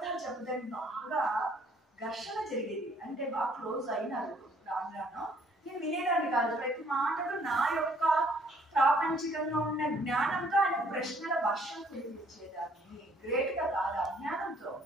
చెప్పడానికి బాగా ఘర్షణ జరిగేది. అంటే బాగా క్లోజ్ అయినారు రాను. నేను వినేదాన్ని కాదు. ప్రతి మాటలు నా యొక్క ప్రాపంచికంగా ఉన్న జ్ఞానంతో ఆయన ప్రశ్నల వర్షం కురిపించేదాన్ని. గ్రేట్గా కాదు, అజ్ఞానంతో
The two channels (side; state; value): both; normal; correlation 0.63